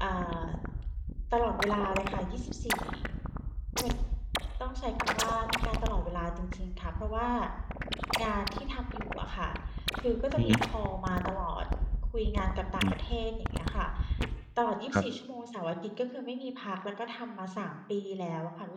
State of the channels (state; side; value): identical; both; correlation 1.00